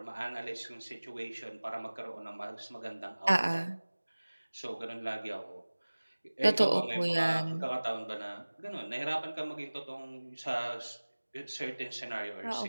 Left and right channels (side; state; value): both; inverted; correlation -1.00